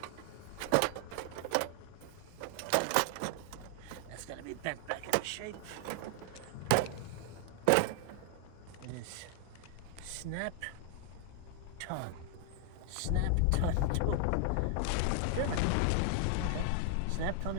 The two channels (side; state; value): both; different; correlation 0.00